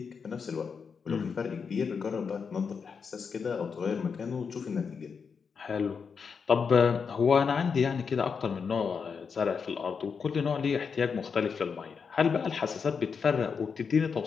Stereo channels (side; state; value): right; quieter; 5.9 dB